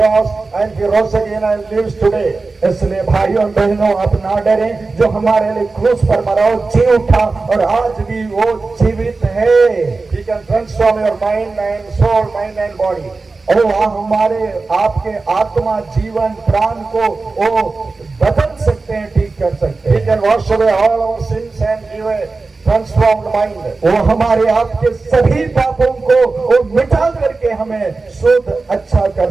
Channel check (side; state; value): left; quieter; 3.8 dB